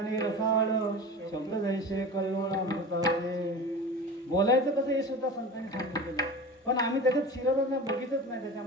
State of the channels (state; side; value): normal; both; correlation 0.33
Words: रसाळ, शब्द जैसे कल्लोळ अमृताचे. बोलायचं कसं हे सुद्धा संतांनी सांगितलेलं. पण आम्ही त्याच्यात शिरतच नाही, बघितच नाही